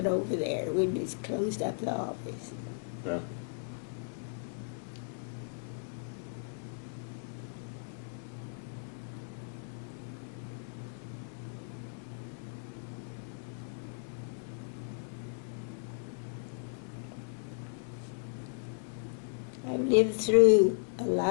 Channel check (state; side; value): silent; right; digital silence